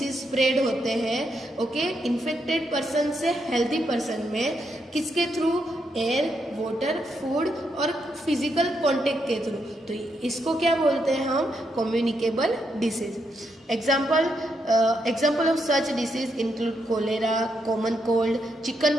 spread होते हैं, okay, infected person से हेल्दी पर्सन में, किसके थ्रू? एयर, वाटर, फूड और फिजिकल कांटेक्ट के थ्रू। तो इसको क्या बोलते हैं हम? Communicable disease. Example of such disease include cholera, common cold, chicken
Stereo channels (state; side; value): normal; both; correlation 0.80